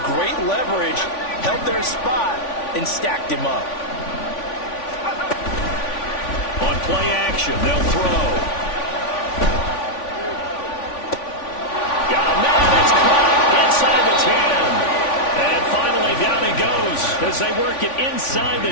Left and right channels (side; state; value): right; late; 3.5 ms